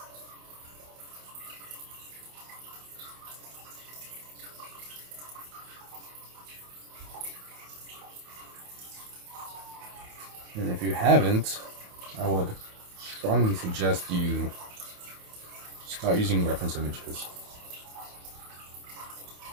And if you haven't, I would strongly suggest you start using reference images.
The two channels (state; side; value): late; left; 28 ms